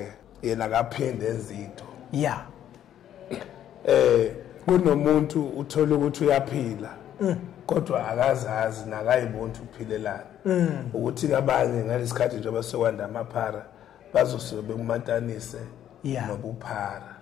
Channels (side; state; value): right; quieter; 10.8 dB